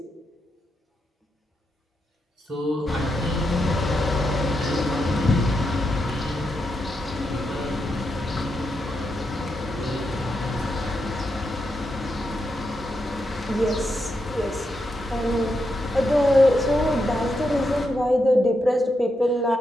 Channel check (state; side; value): normal; both; correlation 0.84